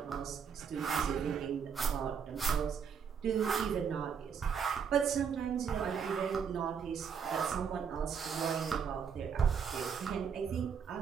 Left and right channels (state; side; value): quieter; left; 6.9 dB